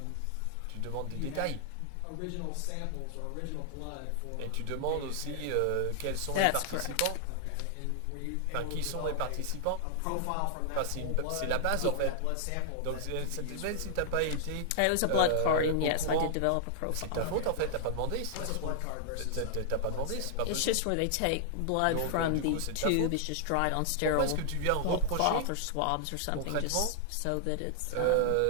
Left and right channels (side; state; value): both; different; correlation -0.01